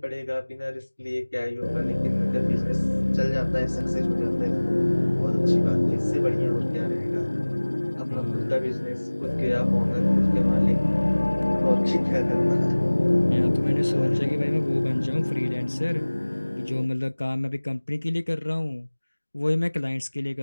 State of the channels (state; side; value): inverted; both; correlation -1.00